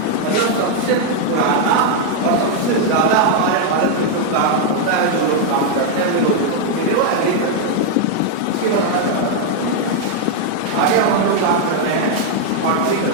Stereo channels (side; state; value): both; different; correlation 0.00